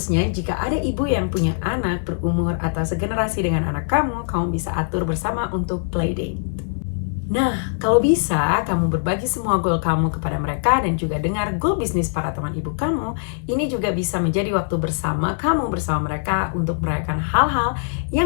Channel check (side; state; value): right; silent; digital silence